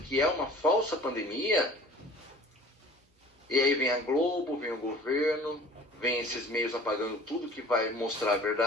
que é uma falsa pandemia. E aí vem a Globo, vem o governo, vem esses meios apagando tudo que vai mostrar a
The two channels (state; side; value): normal; both; correlation 0.46